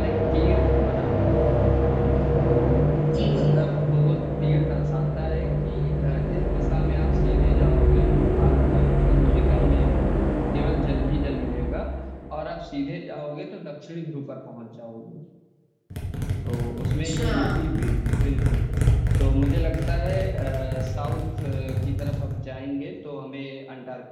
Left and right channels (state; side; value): identical; both; correlation 1.00